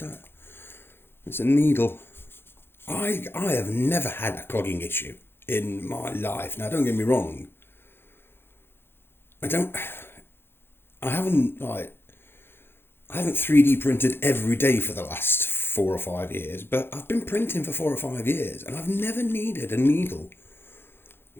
It's a needle. I have never had a clogging issue in my life. Now, don't get me wrong. I haven't 3D printed every day for the last 4 or 5 years, but I've been printing for 4 or 5 years, and I've never needed a needle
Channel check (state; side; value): late; right; 0.11 ms